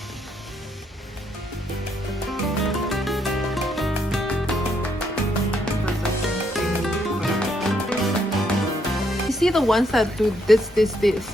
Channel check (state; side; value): normal; both; correlation 0.74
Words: You see the ones that do this.